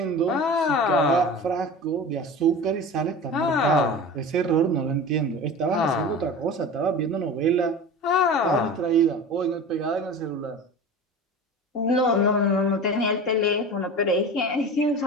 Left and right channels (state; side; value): normal; both; correlation 0.33